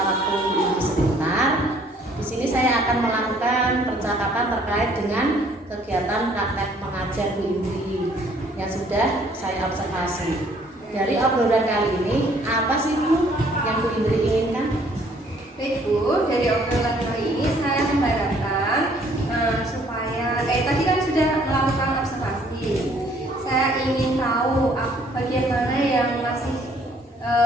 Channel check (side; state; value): both; normal; correlation 0.61